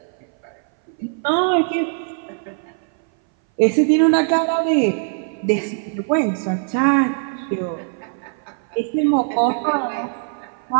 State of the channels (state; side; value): silent; left; 60 dB below the other